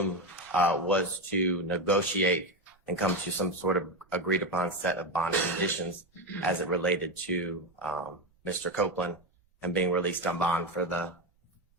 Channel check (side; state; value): both; normal; correlation 0.13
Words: was to negotiate and come to some sort of agreed upon set of bond conditions as it related to Mr. Copeland and being released on bond for the